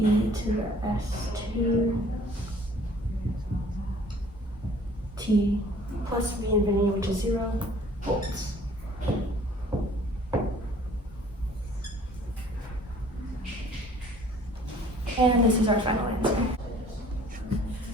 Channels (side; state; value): both; normal; correlation 0.53